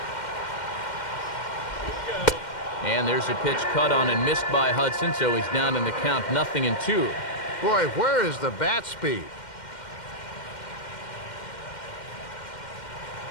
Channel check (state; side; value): late; right; 2.1 ms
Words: And there's a pitch cut on and missed by Hudson, so he's down in the count, 0-2. Boy, where is the bat speed?